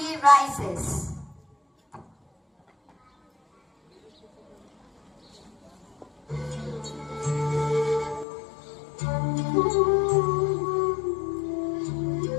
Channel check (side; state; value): right; drops out; at 8.2 s